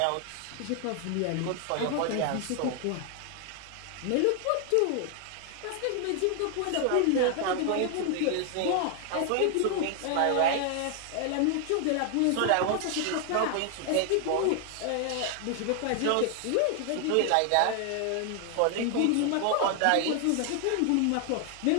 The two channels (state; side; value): different; both; correlation 0.00